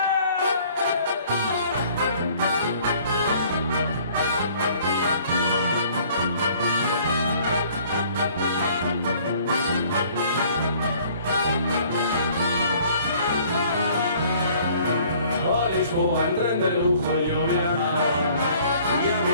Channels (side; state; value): both; inverted; correlation -0.56